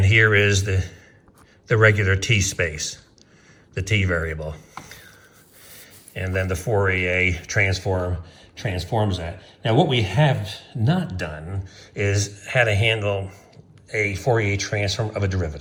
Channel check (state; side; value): identical; both; correlation 1.00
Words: here is the regular t space, the t variable, and then the Fourier transform transforms that. Now, what we have not done is how to handle a Fourier transform of a